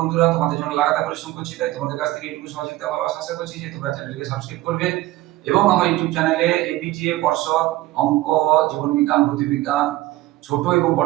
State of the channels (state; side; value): quieter; left; 17.2 dB